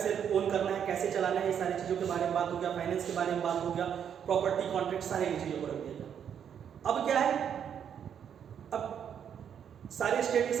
ओन करना है, कैसे चलाना है, ये सारी चीजों के बारे में बात हो गया, फाइनेंस के बारे में बात हो गया, प्रॉपर्टी, कॉन्ट्रैक्ट, सारे चीजों को रख दिया गया। अब क्या है, अब सारे स्टेट के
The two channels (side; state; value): left; quieter; 8.4 dB